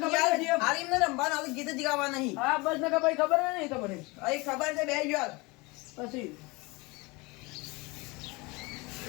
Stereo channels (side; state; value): right; quieter; 25.4 dB